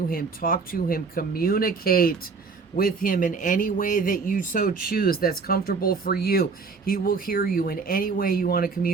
him, talk to him, communicate with him in any way that you so choose that's comfortable for you. He will hear you in any way you want to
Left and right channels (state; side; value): quieter; left; 4.8 dB